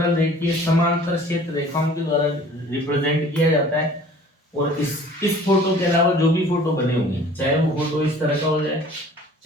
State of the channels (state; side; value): normal; both; correlation 0.49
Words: रेखीय समांतर क्षेत्र रेखाओं के द्वारा रिप्रेजेंट किया जाता है। और इस फोटो के अलावा जो भी फोटो बने होंगे, चाहे वो फोटो इस तरह का हो जाए,